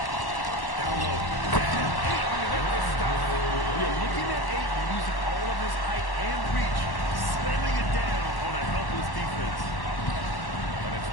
Down low. And 8. With the stuff. You're looking at 8 and using all of his height and reach, slamming it down on a helpless defense. And it's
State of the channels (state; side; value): late; right; 1.1 ms